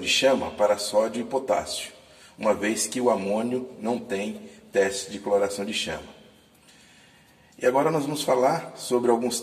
chama para sódio e potássio, uma vez que o amônio não tem teste de coloração de chama. E agora nós vamos falar sobre alguns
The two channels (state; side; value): identical; both; correlation 1.00